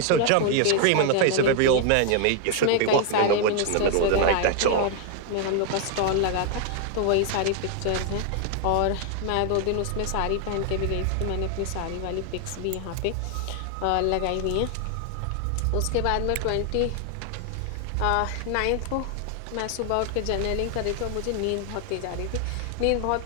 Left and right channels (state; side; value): different; both; correlation 0.00